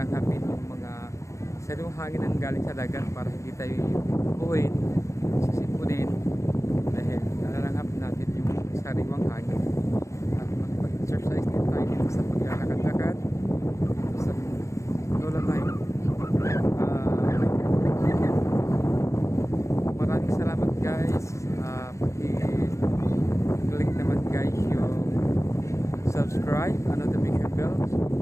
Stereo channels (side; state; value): right; late; 0.15 ms